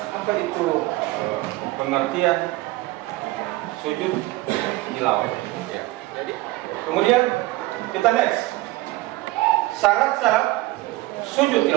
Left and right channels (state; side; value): quieter; left; 19.1 dB